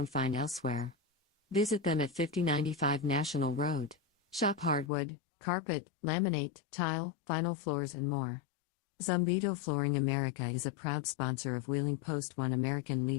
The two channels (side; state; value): right; drops out; at 4.9 s